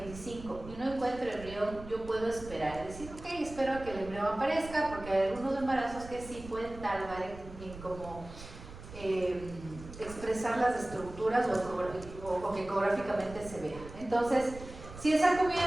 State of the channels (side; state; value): right; noise; rumble, 14 dB below the sound